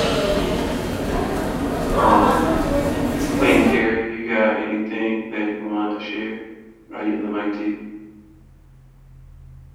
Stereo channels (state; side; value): identical; both; correlation 1.00